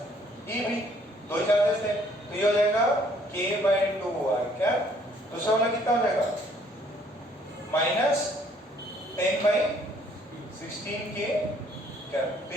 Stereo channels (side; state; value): both; normal; correlation 0.62